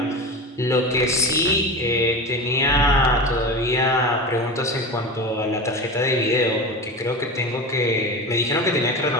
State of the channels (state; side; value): normal; both; correlation 0.27